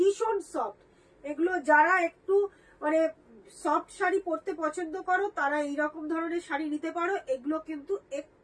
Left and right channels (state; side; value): identical; both; correlation 1.00